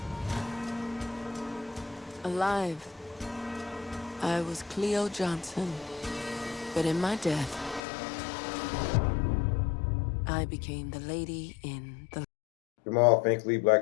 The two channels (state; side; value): drops out; right; at 7.8 s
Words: Alive. I was Cleo Johnson. But in my death, I became the lady in the... Jamal Finkley,